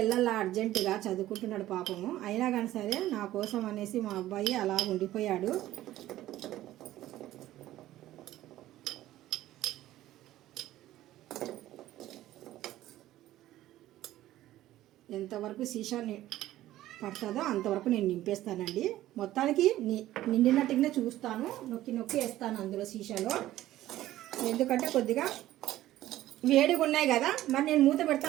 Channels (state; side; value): quieter; left; 14.6 dB